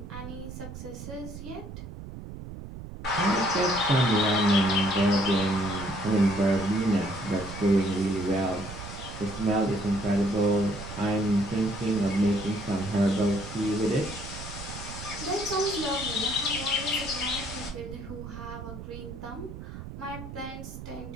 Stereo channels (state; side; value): noise; right; rumble, 11 dB below the sound